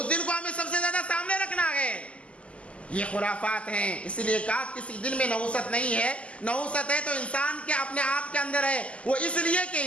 دن کو ہمیں سب سے زیادہ سامنے رکھنا ہے۔ یہ خرافات ہیں، اس لیے کہا کسی دن میں نحوست نہیں ہے۔ نحوست ہے تو انسان کے اپنے آپ کے اندر ہے، وہ اس لیے کہ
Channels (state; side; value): late; right; 0.059 ms